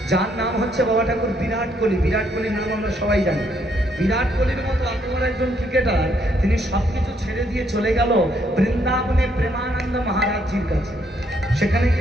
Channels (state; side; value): normal; both; correlation 0.72